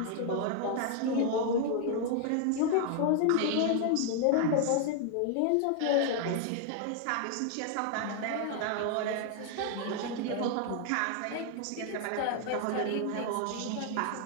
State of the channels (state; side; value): different; both; correlation 0.00